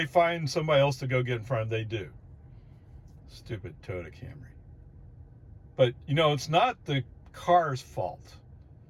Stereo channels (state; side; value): identical; both; correlation 1.00